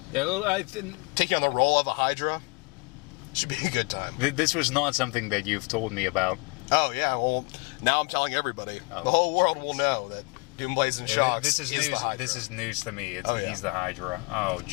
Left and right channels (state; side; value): quieter; right; 29.4 dB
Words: taking on the role of a Hydra should be a good time. This was not something that you've told me about. Oh, yeah. Well, now I'm telling everybody. The whole world will know that Doomblazing Shocks is the Hydra. This is news to me. He's the Hydra. Oh,